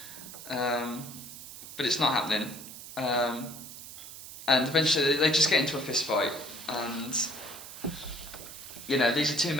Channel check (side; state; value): right; noise; hiss, 13 dB below the sound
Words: But it's not happening. And eventually they just get into a fist fight, and these are two